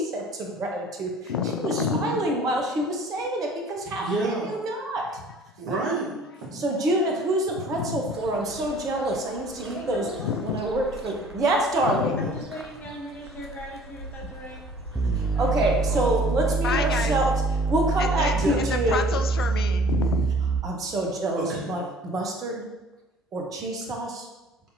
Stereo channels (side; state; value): both; normal; correlation 0.51